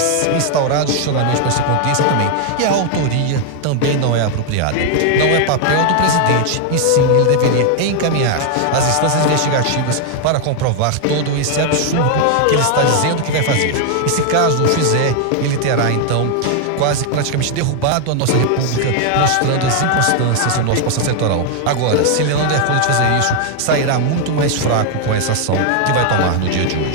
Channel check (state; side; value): different; both; correlation 0.00